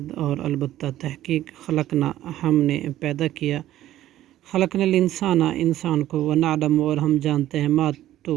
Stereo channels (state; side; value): quieter; left; 13.6 dB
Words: اور البتہ تحقیق خلقنا ہم نے پیدا کیا، خلقنا الانسان انسان کو، وَنَعْلَمُ اور ہم جانتے ہیں، ما